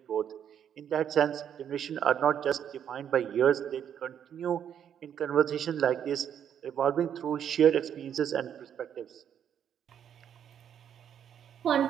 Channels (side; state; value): left; quieter; 9.0 dB